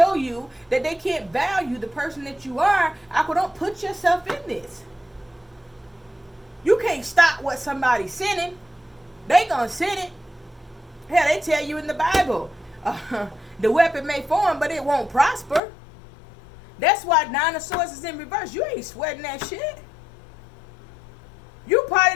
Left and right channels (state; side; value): drops out; right; at 15.6 s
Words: you that they can't value the person that you are, don't put yourself in this. You can't stop what somebody's sending. They gonna send it. Hell, they tell you in the Bible, the weapon may form, but it won't prosper. That's why 9 of Swords is in reverse. You ain't sweating that shit. You probably